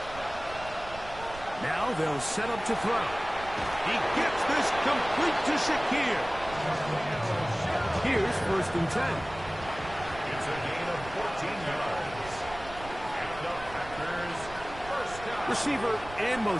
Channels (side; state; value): right; noise; rumble, 15 dB below the sound